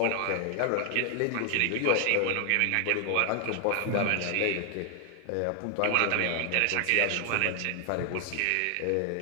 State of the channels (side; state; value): both; different; correlation 0.00